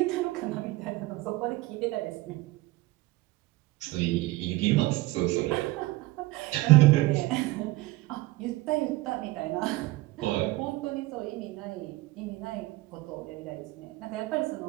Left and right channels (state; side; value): quieter; left; 19.4 dB